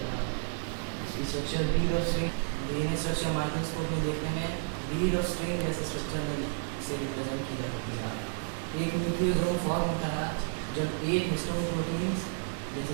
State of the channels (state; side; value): silent; left; digital silence